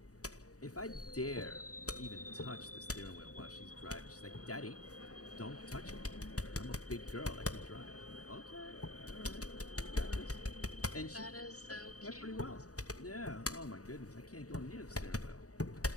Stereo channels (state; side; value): late; right; 0.66 ms